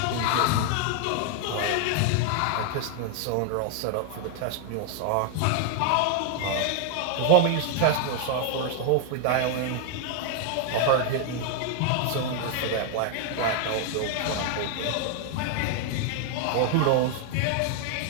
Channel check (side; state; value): both; different; correlation 0.00